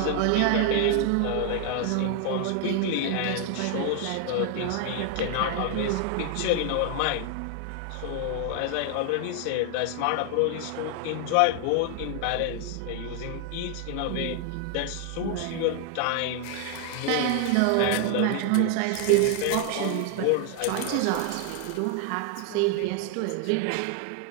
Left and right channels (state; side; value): different; both; correlation 0.00